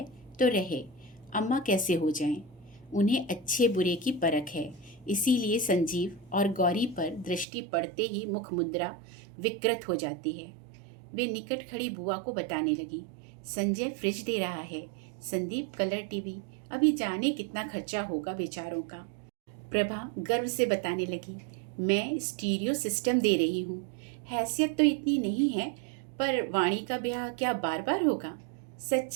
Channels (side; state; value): left; drops out; at 7.5 s